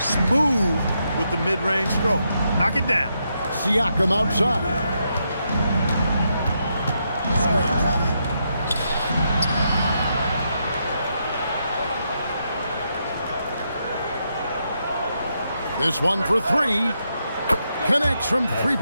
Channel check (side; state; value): both; inverted; correlation -0.81